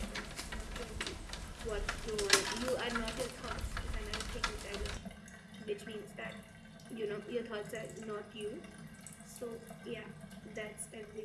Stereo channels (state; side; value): identical; both; correlation 1.00